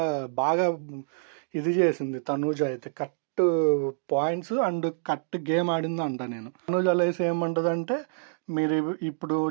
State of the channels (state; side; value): silent; left; digital silence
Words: బాగా ఇది చేసింది తనూజ అయితే. Cut points and cut game ఆడింది అంట నేను. తనూజ లేసి ఏమంటుందంటే, మీరు ఇప్పుడు